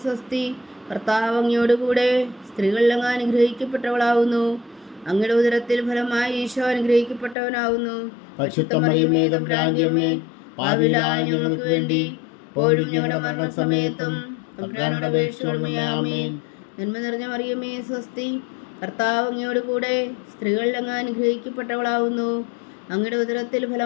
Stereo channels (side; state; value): right; drops out; at 7.4 s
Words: സ്വസ്തി, കർത്താവ് അങ്ങയോട് കൂടെ സ്ത്രീകളിൽ അങ്ങ് അനുഗ്രഹിക്കപ്പെട്ടവളാവുന്നു. അങ്ങയുടെ ഉദരത്തിൽ ഫലമായി ഈശോ അനുഗ്രഹിക്കപ്പെട്ടവനാവുന്നു. പരിശുദ്ധ മറിയമേ തമ്പുരാന്റെ അമ്മേ, പാപികളായ ഞങ്ങൾക്ക് വേണ്ടി ഇപ്പോഴും ഞങ്ങളുടെ മരണസമയത്തും തമ്പുരാനോട് അപേക്ഷിച്ചുകൊള്ളണമേ. ആമേൻ. നന്മ നിറഞ്ഞ മറിയമേ സ്വസ്തി, കർത്താവ് അങ്ങയോട് കൂടെ സ്ത്രീകളിൽ അങ്ങ് അനുഗ്രഹിക്കപ്പെട്ടവളാവുന്നു. അങ്ങയുടെ ഉദരത്തിൽ